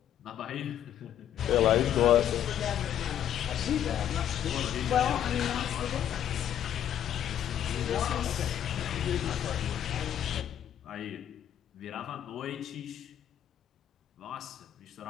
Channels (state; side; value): quieter; right; 10.4 dB